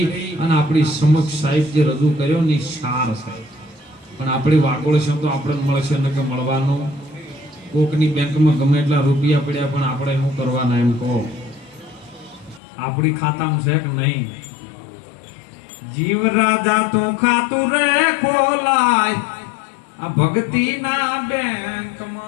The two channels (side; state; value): right; drops out; at 12.6 s